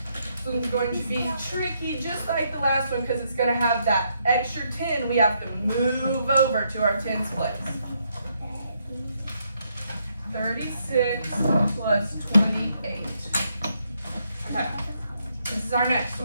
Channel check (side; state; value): both; inverted; correlation -0.76